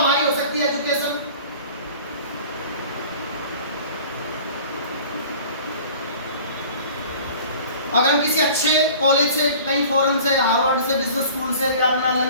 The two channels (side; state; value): both; inverted; correlation -0.45